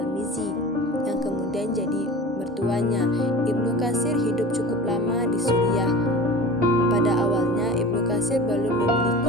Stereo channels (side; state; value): both; normal; correlation 0.37